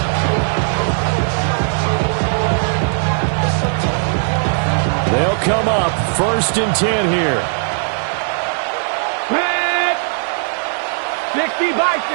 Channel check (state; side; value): silent; left; 62 dB below the other